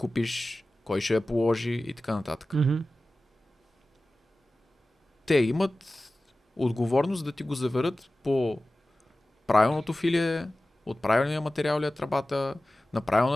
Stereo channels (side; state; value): both; normal; correlation 0.96